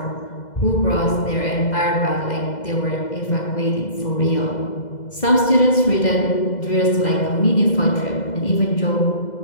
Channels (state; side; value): late; right; 2.0 ms